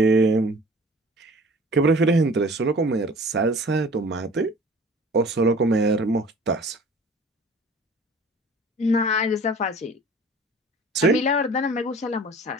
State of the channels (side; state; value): both; normal; correlation 0.46